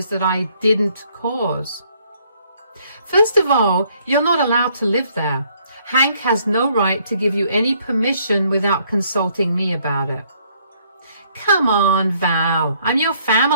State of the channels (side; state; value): both; inverted; correlation -0.66